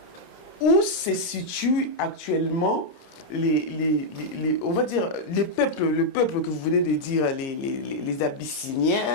où se situent actuellement on va dire, le peuple que vous venez de dire, les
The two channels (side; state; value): right; late; 30 ms